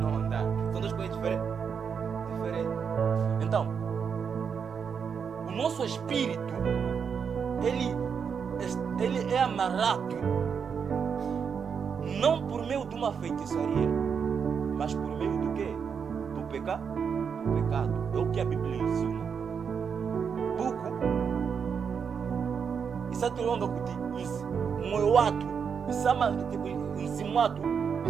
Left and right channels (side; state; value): left; quieter; 6.6 dB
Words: Nosso espírito, ele é amarrado não por meio de uma feitiçaria, mas por meio do quê? Do pecado. É o que a Bíblia ensina. Buco, isso é longa kuti, moyo watu, isama tipo nzimuatu,